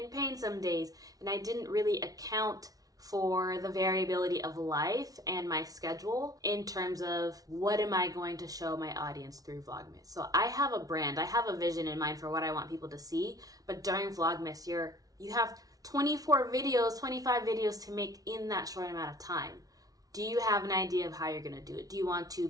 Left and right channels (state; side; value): late; left; 0.18 ms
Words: pain some days. And I didn't really account for the variability of life and my schedule in terms of what am I going to show my audience through Vlogmas. So I have a brand. I have a vision in mind for what I want people to see. But during Vlogmas, you have 24 videos, 25 videos to make in that short amount of time. Do you have an idea of how you're going to do it? Do you want to